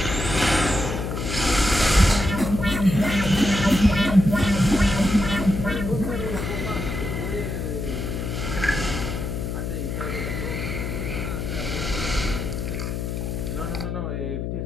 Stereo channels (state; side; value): noise; left; hum, 3 dB below the sound